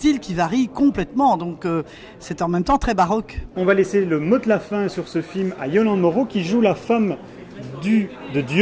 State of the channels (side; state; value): both; identical; correlation 1.00